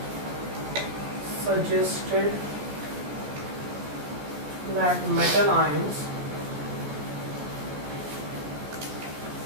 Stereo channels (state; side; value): late; left; 14 ms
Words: suggested that metal ions